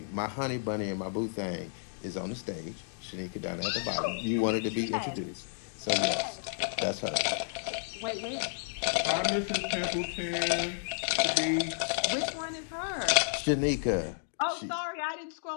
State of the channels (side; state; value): right; silent; digital silence